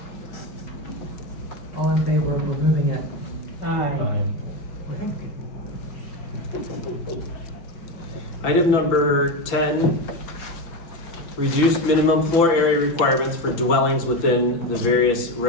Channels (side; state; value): right; late; 6.0 ms